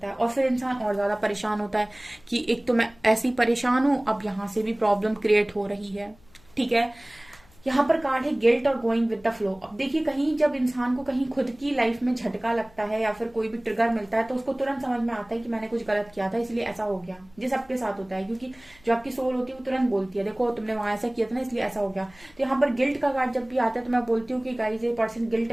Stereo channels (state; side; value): noise; left; hum, 28 dB below the sound